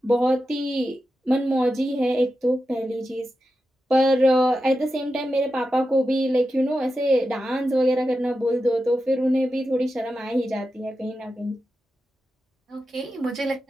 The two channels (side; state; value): both; normal; correlation 0.90